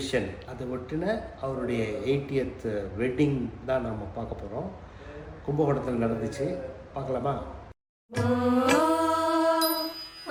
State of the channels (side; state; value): both; identical; correlation 1.00